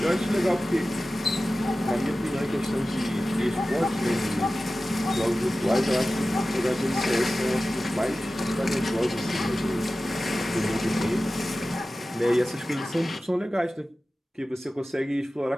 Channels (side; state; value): both; normal; correlation 0.95